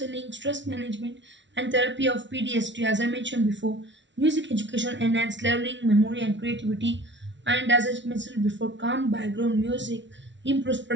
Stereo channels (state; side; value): late; left; 0.53 ms